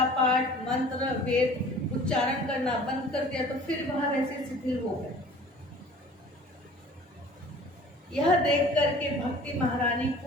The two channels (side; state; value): both; normal; correlation 0.47